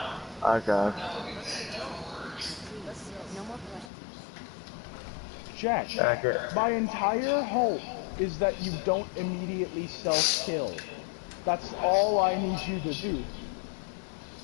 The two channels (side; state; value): right; drops out; at 3.9 s